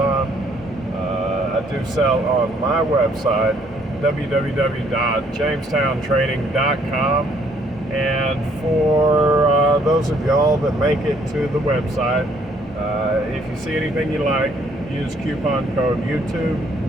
I do sell on my website, www.jamestowntrading.com. And for those of y'all that make it to the website, if you see anything you like, use coupon code YouTube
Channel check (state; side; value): normal; both; correlation 0.65